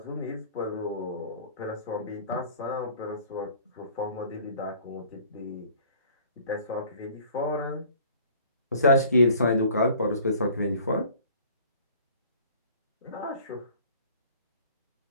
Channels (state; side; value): inverted; both; correlation -0.51